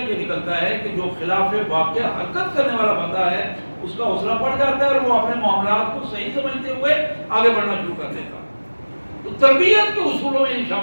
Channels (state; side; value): inverted; both; correlation -1.00